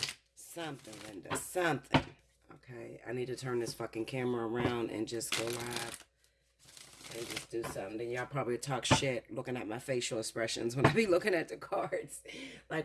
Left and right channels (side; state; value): both; identical; correlation 1.00